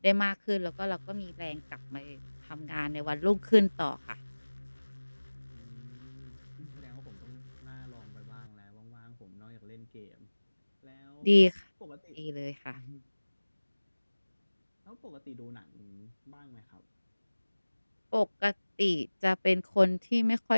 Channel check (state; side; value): inverted; both; correlation -1.00